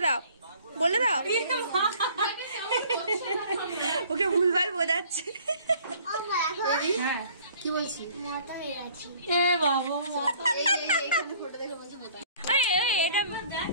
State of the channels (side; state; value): both; inverted; correlation -0.54